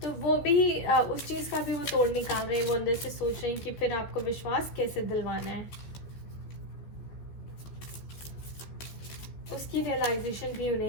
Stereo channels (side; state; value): right; late; 14 ms